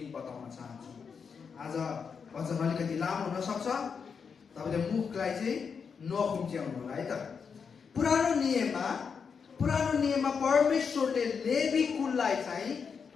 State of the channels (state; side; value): quieter; right; 6.1 dB